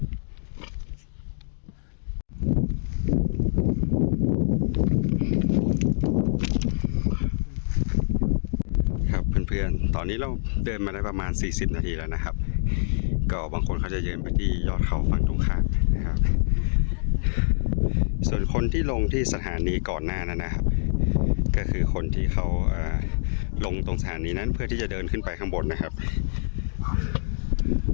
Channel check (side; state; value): right; silent; digital silence